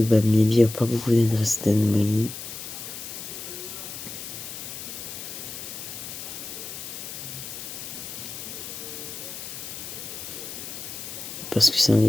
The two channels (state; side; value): noise; left; hiss, 9 dB below the sound